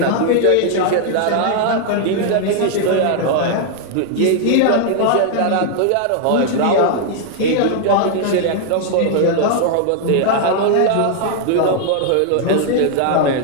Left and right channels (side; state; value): both; different; correlation 0.00